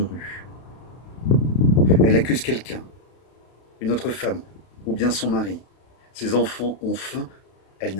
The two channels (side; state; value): right; late; 32 ms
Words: Elle accuse quelqu'un, une autre femme, ou bien son mari. Ses enfants ont faim, elle